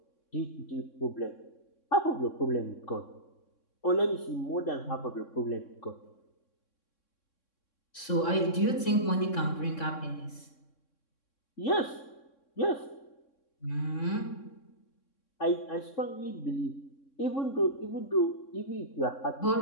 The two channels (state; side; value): late; right; 3.6 ms